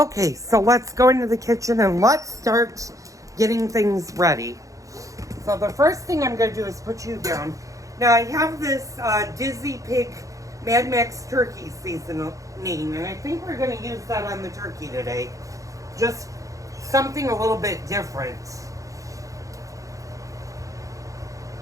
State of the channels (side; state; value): left; late; 0.16 ms